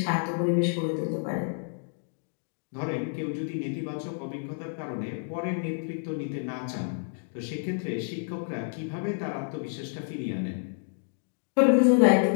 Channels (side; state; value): right; silent; digital silence